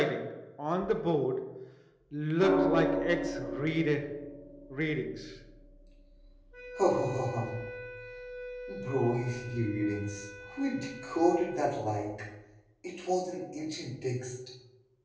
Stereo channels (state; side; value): identical; both; correlation 1.00